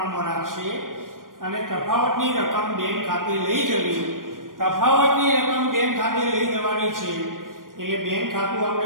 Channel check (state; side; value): late; left; 0.90 ms